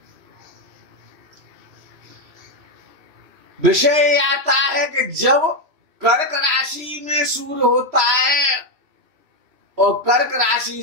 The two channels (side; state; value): left; late; 3.1 ms